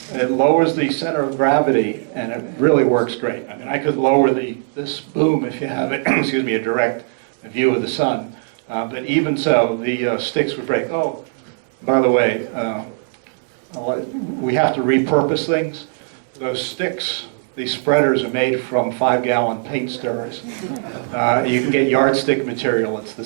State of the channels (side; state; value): left; silent; 66 dB below the other